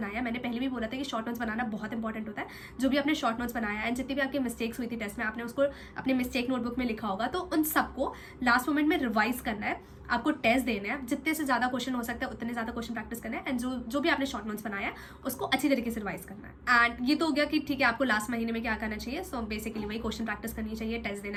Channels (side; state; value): both; identical; correlation 1.00